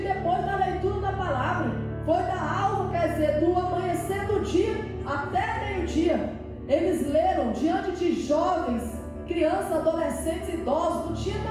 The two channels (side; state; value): both; identical; correlation 1.00